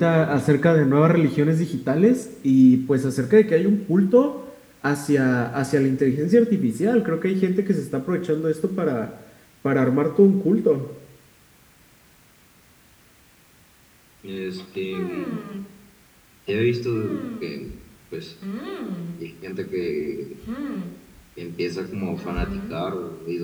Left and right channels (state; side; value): identical; both; correlation 1.00